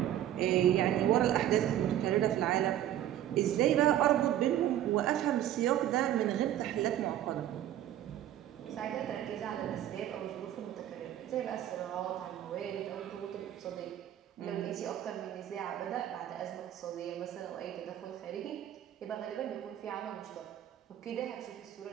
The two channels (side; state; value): left; quieter; 11.9 dB